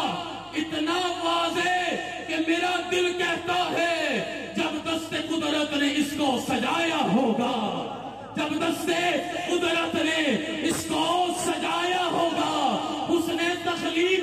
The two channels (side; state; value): both; identical; correlation 1.00